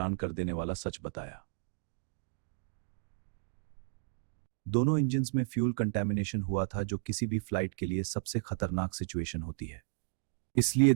कर देने वाला सच बताया। दोनों इंजन्स में फ्यूल कंटेमिनेशन हुआ था, जो किसी भी फ्लाइट के लिए सबसे खतरनाक सिचुएशन होती है। इसलिए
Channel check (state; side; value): silent; left; digital silence